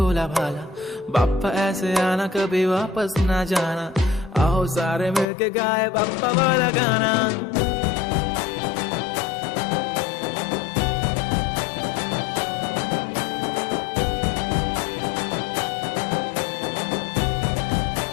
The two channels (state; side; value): drops out; right; at 5.2 s